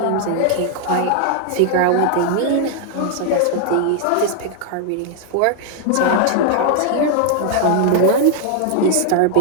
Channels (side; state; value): both; different; correlation 0.00